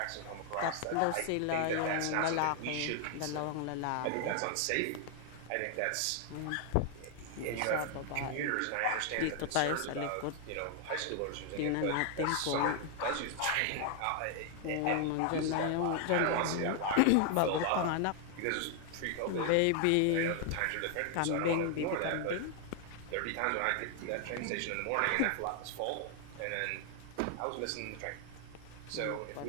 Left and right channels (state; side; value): different; both; correlation 0.00